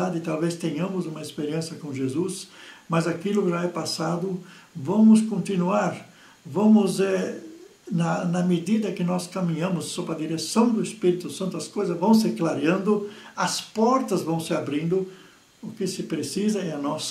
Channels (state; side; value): identical; both; correlation 1.00